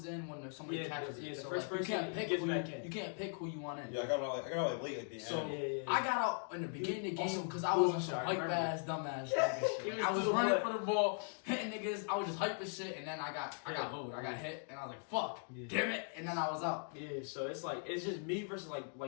in when there's somebody Yeah, catches yeah, it. the So first like, you person can't pick gets who back in. you can't pick who you want in. Yeah, I got like late at the end. So Yeah. I got out in the beginning of the game Also, because I was on bullshit, some I hype remember. ass, dumbass Yeah, nigga he shit. was I was to the running butt. for the ball, hitting niggas. I was just hyping shit, and then I got Yeah. hold. I got hit, and I was like, "Fuck, Yeah. damn it!" And then I was out. Yeah, so it's like it's just me versus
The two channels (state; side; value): silent; right; 51 dB below the other